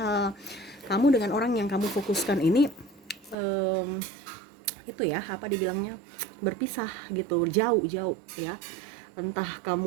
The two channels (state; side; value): drops out; left; at 3.4 s